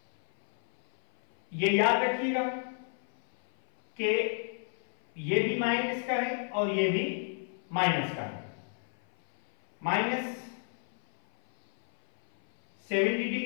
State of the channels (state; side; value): silent; right; 58 dB below the other